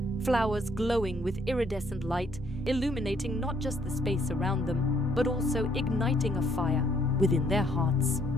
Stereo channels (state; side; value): normal; both; correlation 0.67